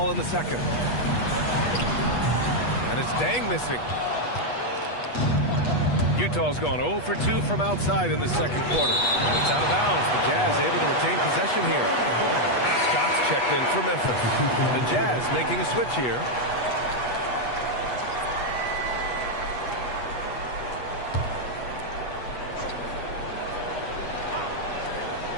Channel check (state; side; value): late; right; 8.2 ms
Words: in the second. And it's Dang missing. Utah's gone 0 for 2 from outside in the second quarter. And it's out of bounds. The Jazz able to retain possession here. Scott's checked in for Memphis. The Jazz making a switch here.